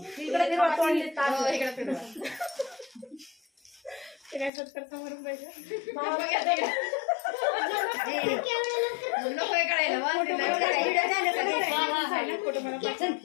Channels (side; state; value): right; drops out; at 4.5 s